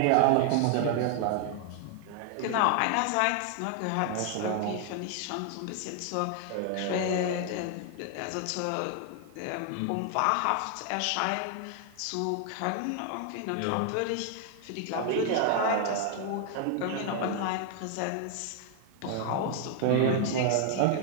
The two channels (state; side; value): different; both; correlation 0.00